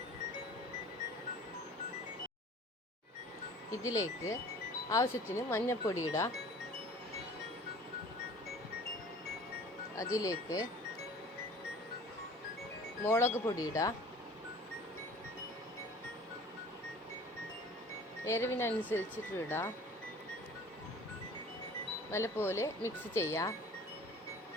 ഇതിലേക്ക് ആവശ്യത്തിന് മഞ്ഞൾപ്പൊടി ഇടാം. അതിലേക്ക് മുളക് പൊടി ഇടാം. എരിവിനനുസരിച്ചിട്ട് ഇടാം. നല്ലപോലെ മിക്സ് ചെയ്യാം.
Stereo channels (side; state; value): both; normal; correlation 0.46